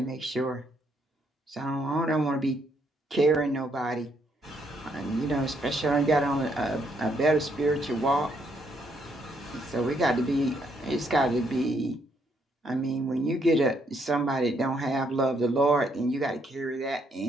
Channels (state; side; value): normal; both; correlation 0.73